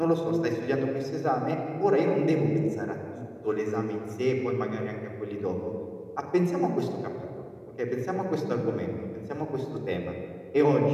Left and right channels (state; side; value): identical; both; correlation 1.00